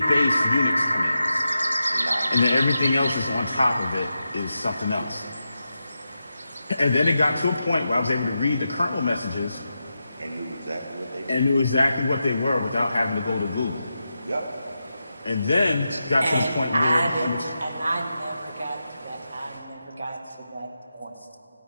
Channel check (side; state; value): both; inverted; correlation -0.89